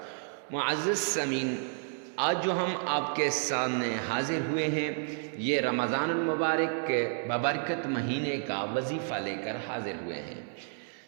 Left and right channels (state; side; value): silent; left; 56 dB below the other